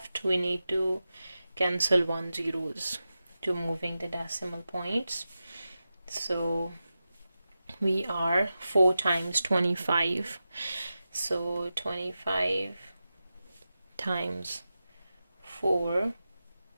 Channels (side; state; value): both; inverted; correlation -0.92